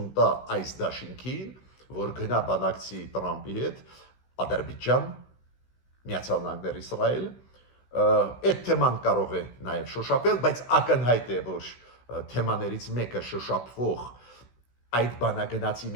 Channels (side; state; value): right; late; 16 ms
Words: տա այս դաշինքին, որ գնա բանակցի Տրամպի հետ, Ադրբեջան, Միացյալ Նահանգներ Իսրայել, այդ թեման կարող է նաև շոշափել, բայց ակնհայտ է, որ թեմաներից մեկը շոշափվող այդ բանագնացի